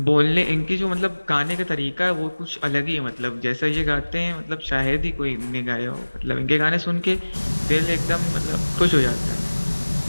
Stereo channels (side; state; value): both; inverted; correlation -1.00